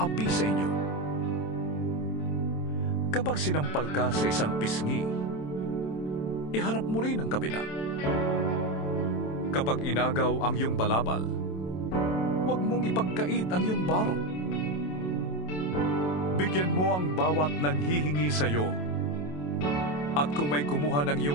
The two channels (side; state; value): right; late; 27 ms